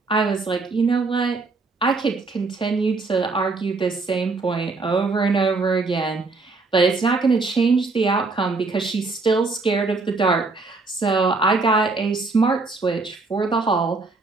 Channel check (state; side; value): quieter; left; 3.8 dB